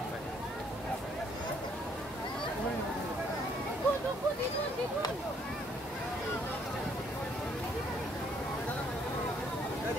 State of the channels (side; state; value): both; normal; correlation 0.66